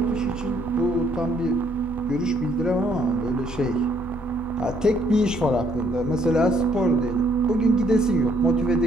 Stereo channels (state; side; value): normal; both; correlation 0.68